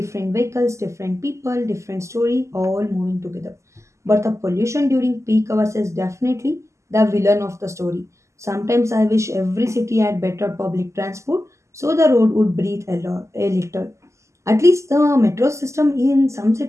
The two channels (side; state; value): left; late; 0.14 ms